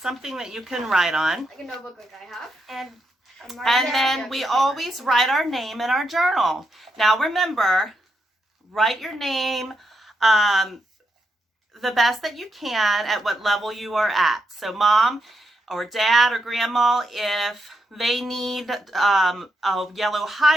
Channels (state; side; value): normal; both; correlation 0.82